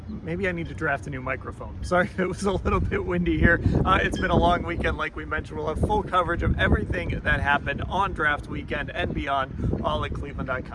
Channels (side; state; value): both; identical; correlation 1.00